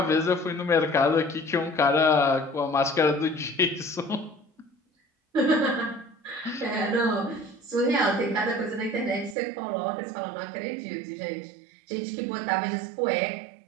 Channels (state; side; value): drops out; left; at 9.3 s